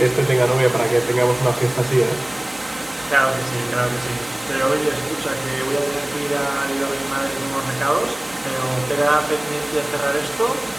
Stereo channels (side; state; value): right; noise; hum, 27 dB below the sound